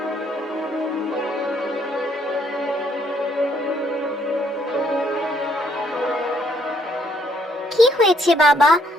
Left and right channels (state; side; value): normal; both; correlation 0.69